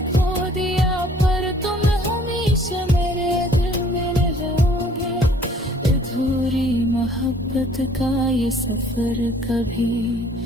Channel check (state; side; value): normal; both; correlation 0.57